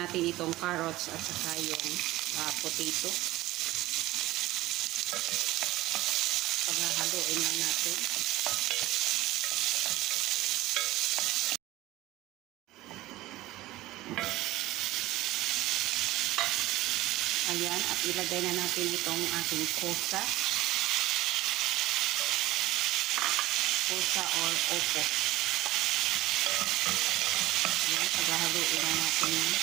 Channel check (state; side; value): quieter; left; 17.4 dB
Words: itong carrots at saka yung potato. Paghahaluin lang natin. Ayan, at ilagay na natin itong ating kosa. Kosa or opo. Ayan, paghahaluin lang natin.